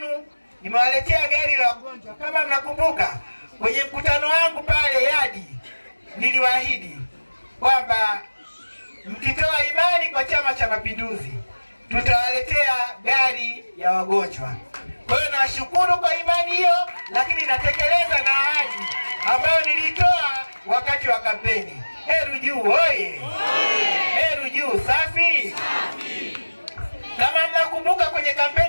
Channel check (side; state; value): both; inverted; correlation -1.00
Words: nimewaletea gari la wagonjwa. Kama mnakumbuka kwenye mkutano wangu pale Yadi, niliwaahidi kwamba mkitoa imani kwa Chama cha Mapinduzi tutawaletea gari ya wagonjwa. Kwa hiyo nawashukuru kwa imani hiyo, lakini natekeleza na ahadi ambayo nilitoa wakati wa kampeni. Heru Juu oye! Heru Juu safi! Kama mnakumbuka kwenye